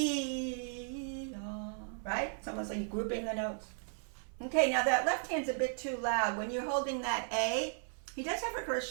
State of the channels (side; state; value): left; silent; 54 dB below the other